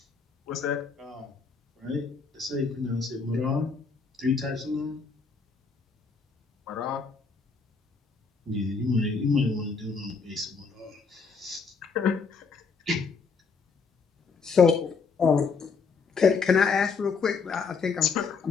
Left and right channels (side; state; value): right; quieter; 5.1 dB